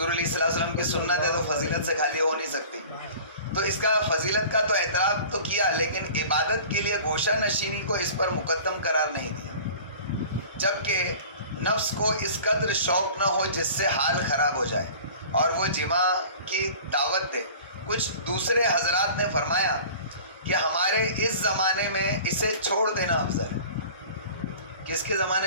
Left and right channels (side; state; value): both; inverted; correlation -0.42